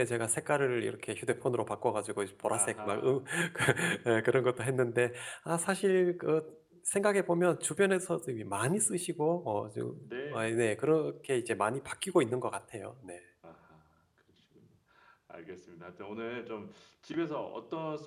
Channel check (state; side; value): identical; both; correlation 1.00